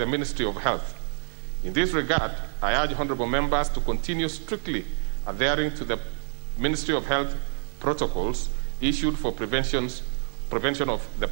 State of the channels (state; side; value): silent; left; digital silence